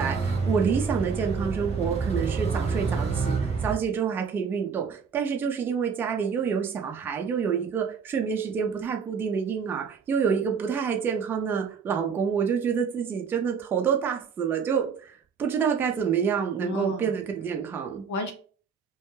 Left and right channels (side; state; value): left; quieter; 6.0 dB